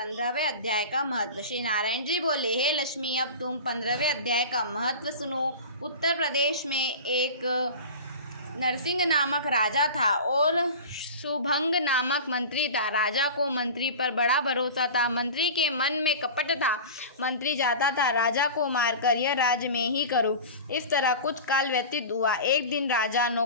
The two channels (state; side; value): inverted; both; correlation -0.33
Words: अध्याय का महत्व। श्री नारायण जी बोले, हे लक्ष्मी, अब तुम 15वें अध्याय का महत्व सुनो। उत्तर प्रदेश में एक नरसिंह नामक राजा था और शुभंग नामक मंत्री था। राजा को मंत्री पर बड़ा भरोसा था। मंत्री के मन में कपट था। मंत्री चाहता था राजा को मारकर यह राज्य में ही करूं। इस तरह कुछ काल व्यतीत हुआ। एक दिन राजा